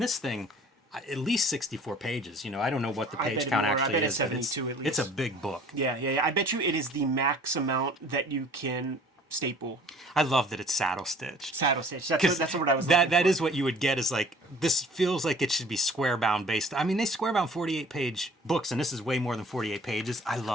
thing, at least 64 pages. You know, I don't know what the I page bet it count more. I actually bet it's is, but 72 at it's a least. big book. Yeah. I bet you it is the max amount that you can staple. I love that it's saddle stitched. Saddle stitch. Because That's what I was looking that for. is what you would get is like, this feels like it should be square bound based. I mean, they square bound 48 page books, and this is way more than 48 pages. I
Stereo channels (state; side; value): normal; both; correlation 0.51